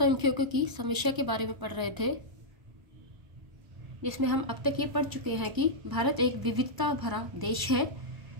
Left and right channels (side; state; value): left; late; 1.0 ms